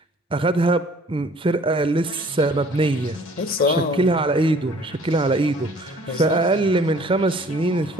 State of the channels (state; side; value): normal; both; correlation 0.54